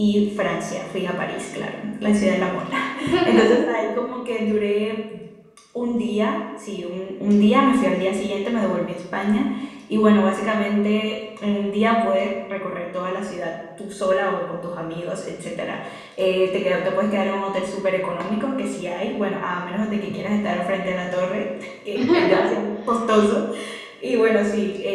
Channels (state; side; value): identical; both; correlation 1.00